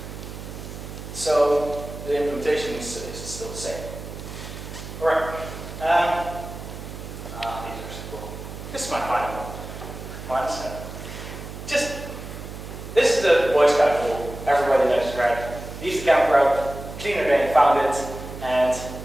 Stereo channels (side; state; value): right; noise; hum, 11 dB below the sound